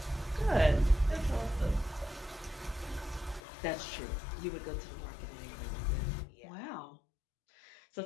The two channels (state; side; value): drops out; right; at 3.4 s